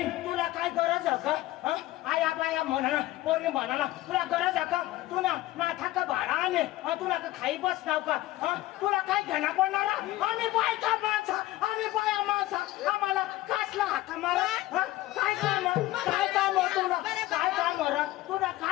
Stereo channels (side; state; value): right; quieter; 16.7 dB